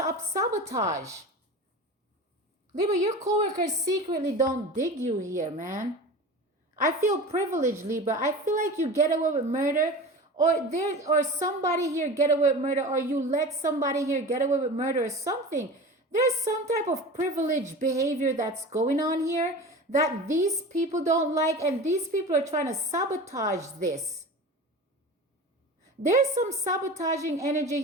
Libra, your coworkers secretly don't dig you here, man. I feel privileged, Libra. I feel like you get away with murder, or somebody here get away with murder, or you let somebody here get away with murder or something. There's some type of privileged behavior that's going on here that these people don't like, and these people are trying to sabotage this. There's some sabotaging energy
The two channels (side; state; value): both; normal; correlation 0.33